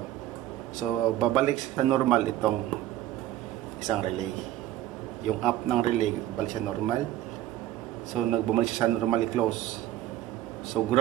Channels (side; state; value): left; quieter; 13.8 dB